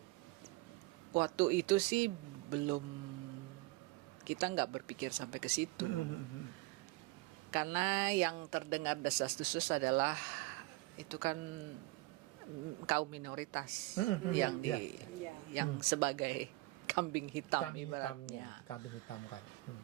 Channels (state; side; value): quieter; left; 21.9 dB